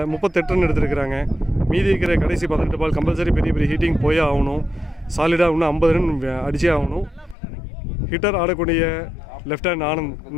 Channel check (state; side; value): drops out; right; at 7.4 s